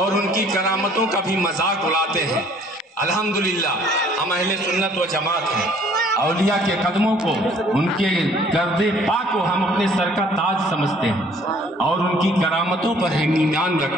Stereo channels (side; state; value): both; normal; correlation 0.57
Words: ان کی کرامتوں کا بھی مذاق اڑاتے ہیں۔ الحمدللہ ہم اہل سنت و جماعت ہیں، اولیاء کے قدموں کو، ان کے گرد پاک کو ہم اپنے سر کا تاج سمجھتے ہیں اور ان کی کرامتوں پر ہم ایمان